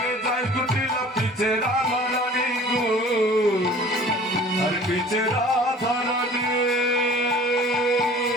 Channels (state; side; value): normal; both; correlation 0.47